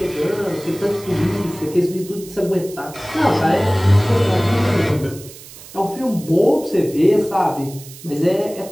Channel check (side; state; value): right; noise; hiss, 18 dB below the sound